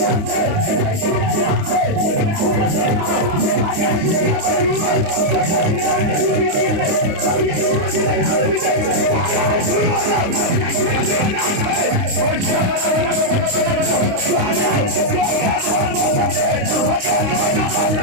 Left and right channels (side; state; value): left; late; 29 ms